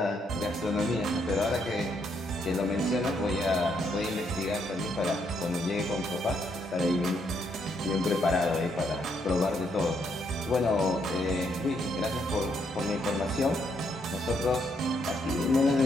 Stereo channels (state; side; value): normal; both; correlation 0.75